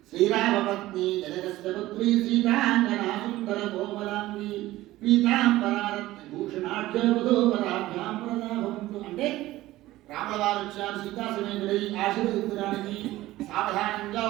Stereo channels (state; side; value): quieter; left; 16.6 dB